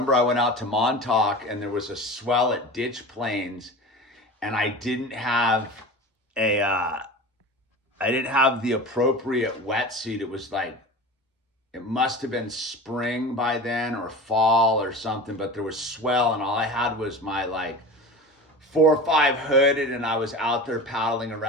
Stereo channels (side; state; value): both; normal; correlation 0.33